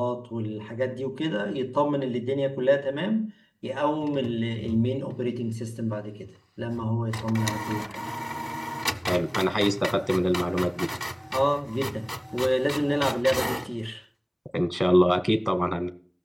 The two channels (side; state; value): both; identical; correlation 1.00